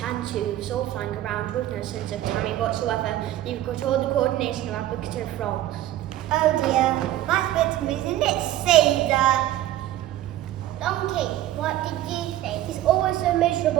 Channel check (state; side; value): quieter; left; 13.7 dB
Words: all flying around with no sense of timing whatsoever. You've got all the coordination of applicative frogs. Oh dear, that's a bit isn't it, Caesar? Donkey, what did you think? It's always so